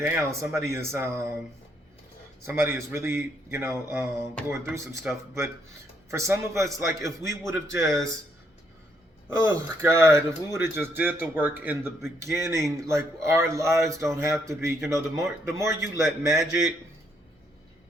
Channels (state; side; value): normal; both; correlation 0.72